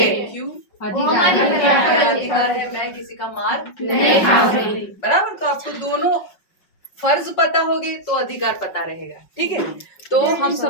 क्यों? अधिकार है, मैं किसी का मार नहीं खाऊंगी, बराबर। तो आपको दोनों फर्ज पता होगे तो अधिकार पता रहेगा, ठीक है। तो हम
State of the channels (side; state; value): right; late; 5.4 ms